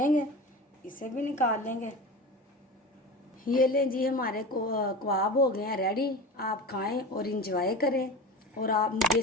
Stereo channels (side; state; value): both; normal; correlation 0.30